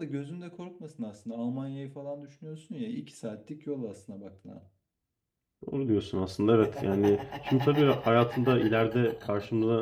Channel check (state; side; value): identical; both; correlation 1.00